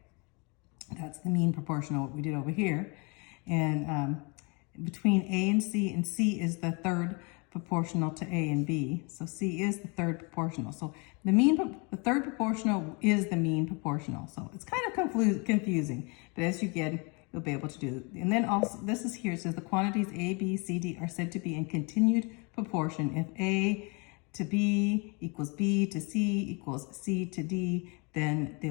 That's the mean proportional, what we did over here. And between A and C is the third proportional to A and B. So C is the third proportional. So the third proportional is the mean proportional. So it's kind of confusing, but as you get, you'll be able to do it. And then also, this is here, it says the quantities A, B, C, D are said to be in continued proportion. If A to B equals B to C equals C to D, then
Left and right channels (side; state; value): right; quieter; 31.0 dB